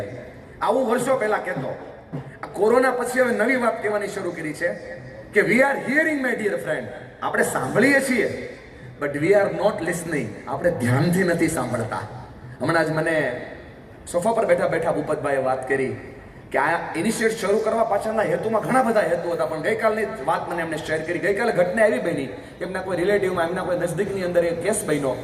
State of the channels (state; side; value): identical; both; correlation 1.00